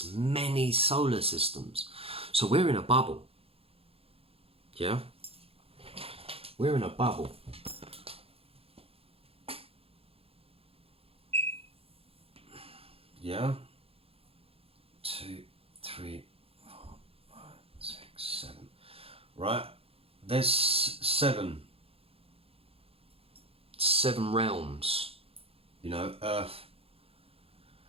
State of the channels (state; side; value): late; left; 0.28 ms